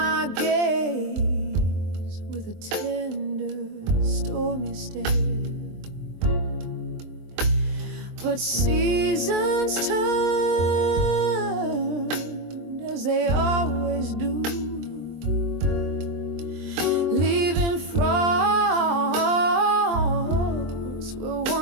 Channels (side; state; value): left; late; 23 ms